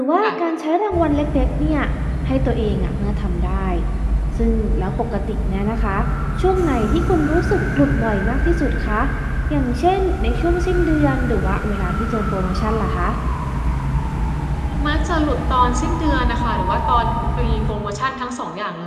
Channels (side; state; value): both; identical; correlation 1.00